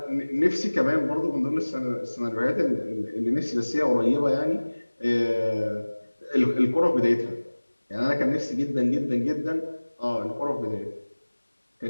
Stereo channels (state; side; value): inverted; both; correlation -1.00